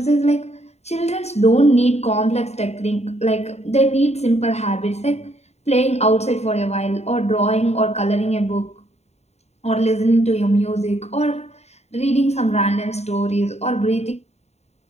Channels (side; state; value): right; late; 0.32 ms